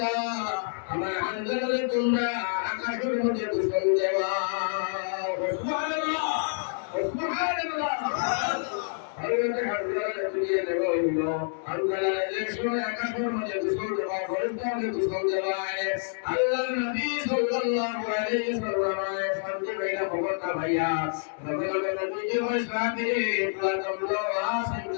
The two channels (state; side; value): silent; right; digital silence